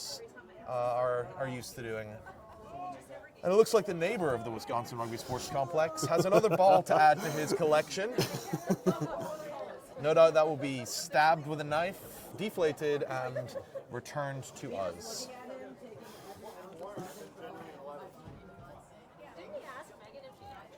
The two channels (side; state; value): both; identical; correlation 1.00